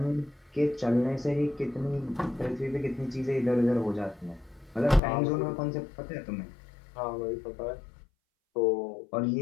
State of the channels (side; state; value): right; drops out; at 5.0 s